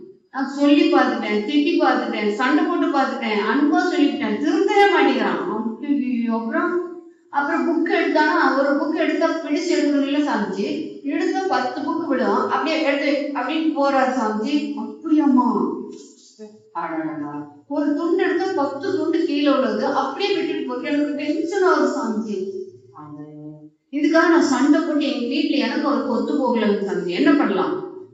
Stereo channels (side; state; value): both; identical; correlation 1.00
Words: நான் சொல்லி பார்த்துட்டேன், திட்டி பார்த்துட்டேன், சண்டை போட்டு பார்த்துட்டேன், அன்பா சொல்லிட்டேன், திருந்தவே மாட்டேங்கிறான். அப்புறம் புக் எடுத்தானா, ஒரு புக் எடுத்தா பிடிச்சு எடுக்கணும்ல சாமிஜி, எடுத்தா 10 புக்கு விடும், அப்படியே எடுத்து அப்படின்னு போறாரு சாமிஜி. அப்படியாம்மா? அடடா, ஒரு துண்டு எடுத்தா 10 துண்டு கீழே உள்ளது, அப்படியே விட்டுட்டு போட்டு எனக்கு டென்ஷன் ஆகுது சாமிஜி. இதுக்காக நான் சண்டை போட்டு எங்க வீட்டுல எனக்கு ஒரு கொத்து போகல சாமிஜி. என்ன பண்ணலாம்?